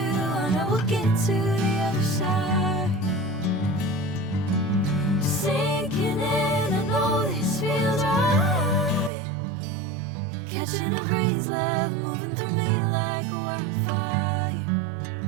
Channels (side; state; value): left; drops out; at 9.1 s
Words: know we'll get to the other side. Sinking in, I know this feels right. Catching a crazy love, moving through me like a wildfire,